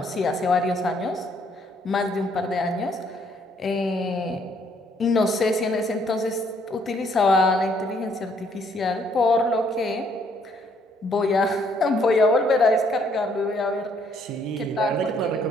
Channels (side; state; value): both; normal; correlation 0.67